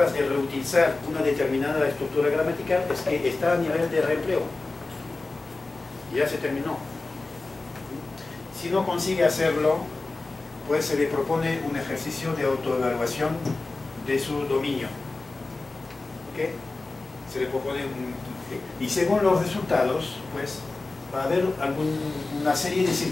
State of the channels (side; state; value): right; quieter; 3.4 dB